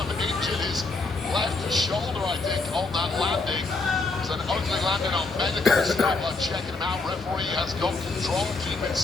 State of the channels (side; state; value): right; quieter; 3.6 dB